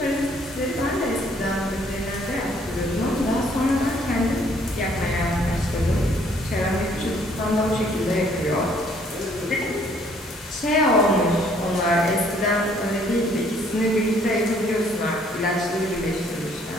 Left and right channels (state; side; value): normal; both; correlation 0.63